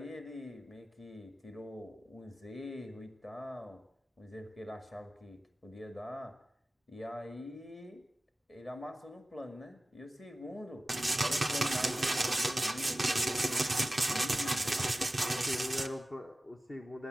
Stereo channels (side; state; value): both; normal; correlation 0.96